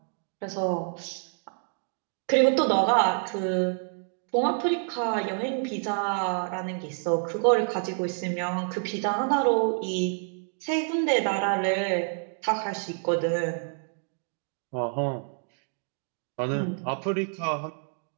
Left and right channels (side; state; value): left; silent; 59 dB below the other